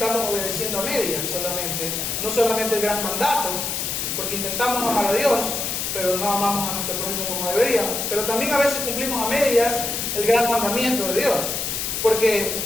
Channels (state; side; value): noise; left; hiss, 2 dB below the sound